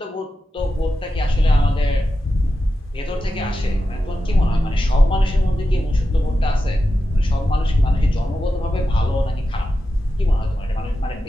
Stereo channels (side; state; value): both; normal; correlation 0.91